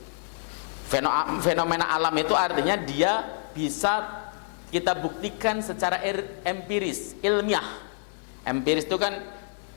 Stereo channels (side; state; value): right; silent; 60 dB below the other